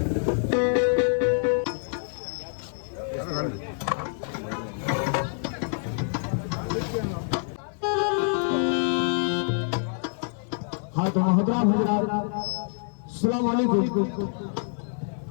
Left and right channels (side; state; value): right; silent; 60 dB below the other